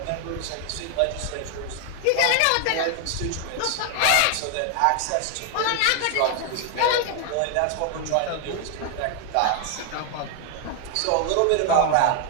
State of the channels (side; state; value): both; different; correlation 0.00